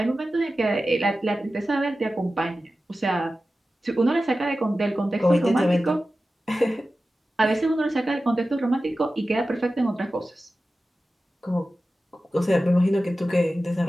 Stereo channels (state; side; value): normal; both; correlation 0.94